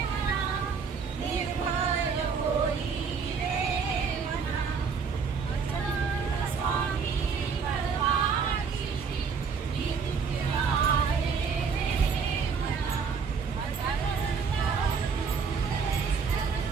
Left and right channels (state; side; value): quieter; left; 5.7 dB